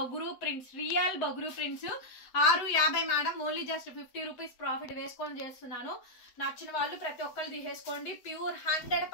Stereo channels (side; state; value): right; late; 7.8 ms